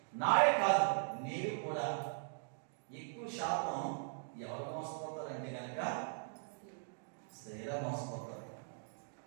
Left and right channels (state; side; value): silent; left; digital silence